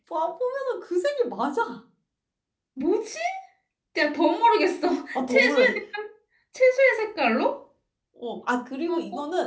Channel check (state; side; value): identical; both; correlation 1.00